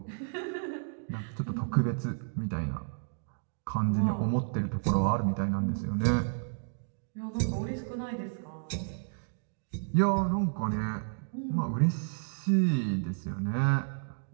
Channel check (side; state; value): left; silent; digital silence